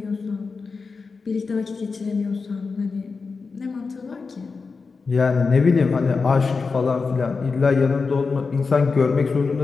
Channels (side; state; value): right; quieter; 4.6 dB